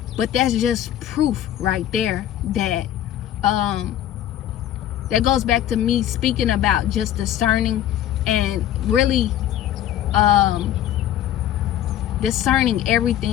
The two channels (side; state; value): right; quieter; 11.7 dB